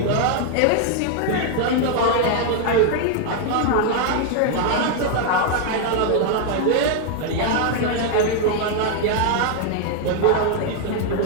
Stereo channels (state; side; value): different; both; correlation 0.00